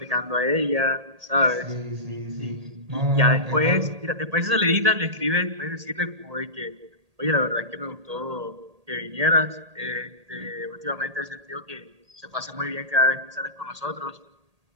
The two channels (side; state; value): left; late; 1.8 ms